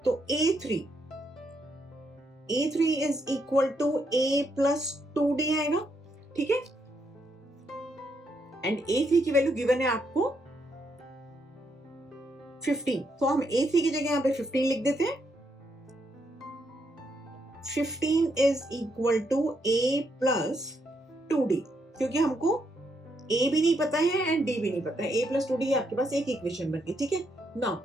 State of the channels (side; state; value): both; normal; correlation 0.77